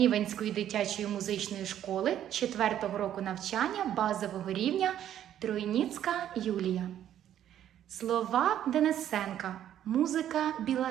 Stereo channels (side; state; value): left; quieter; 10.9 dB